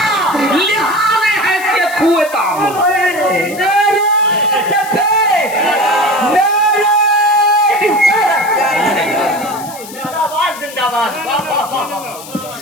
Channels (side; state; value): left; noise; hiss, 15 dB below the sound